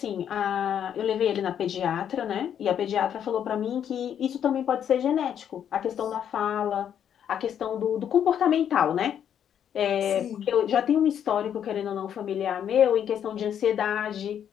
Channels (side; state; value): right; quieter; 9.2 dB